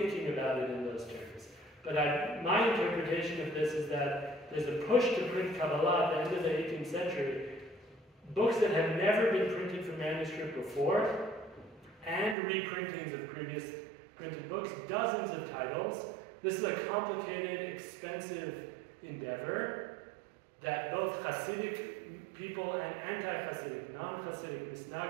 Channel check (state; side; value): drops out; left; at 12.4 s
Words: about it in those terms. But my interpretation of this is that there's a push to print Kabbalah at the end of the 18th century, books that have never been printed from manuscript before, and reprintings of previous printed books, dozens of titles. This is a complicated, expensive endeavor that both Hasidic people and anti-Hasidic, non-Hasidic,